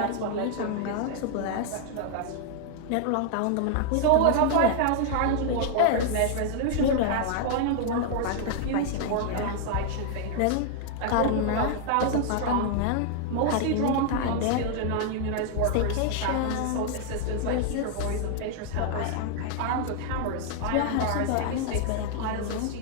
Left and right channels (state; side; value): different; both; correlation 0.00